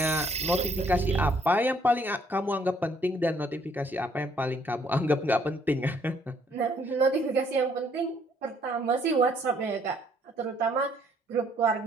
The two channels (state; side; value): normal; both; correlation 0.65